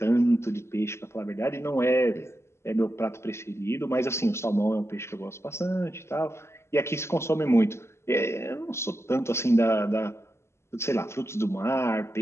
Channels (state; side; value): late; right; 0.13 ms